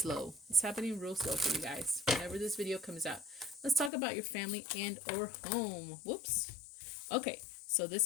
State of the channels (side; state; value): right; drops out; at 3.9 s